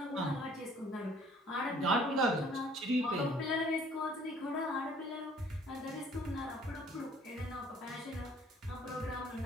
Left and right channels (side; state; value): both; normal; correlation 0.57